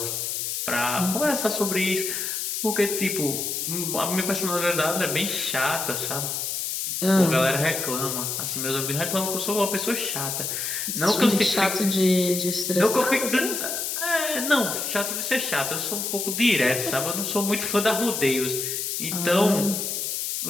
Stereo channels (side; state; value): left; noise; hiss, 2 dB below the sound